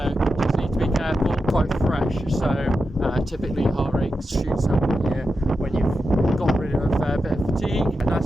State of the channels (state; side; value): normal; both; correlation 0.89